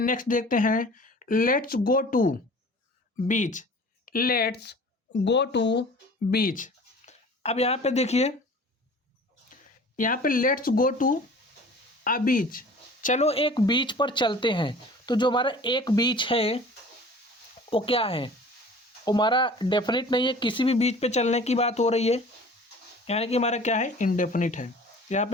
देखते हैं। Let's go to beach, let's go to beach. अब यहाँ पे देखिए, यहाँ पे लेट्स गो टू अ बीच, चलो एक बीच पर चलते हैं। तो जो हमारा एक बीच है वो क्या है? वो हमारा डेफिनेट नहीं है, किसी भी बीच पे चलने की बात हो रही है, यानी कि हमारा क्या है? इनडेफिनिट है। यहाँ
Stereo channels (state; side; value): normal; both; correlation 0.45